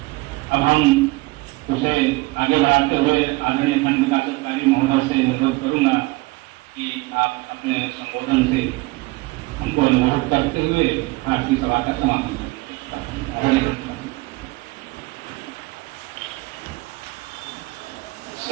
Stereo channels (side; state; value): left; quieter; 22.7 dB